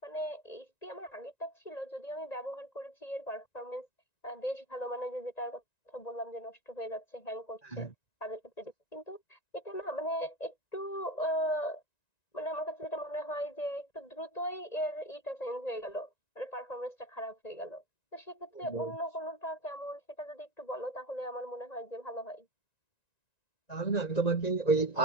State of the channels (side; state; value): right; late; 1.9 ms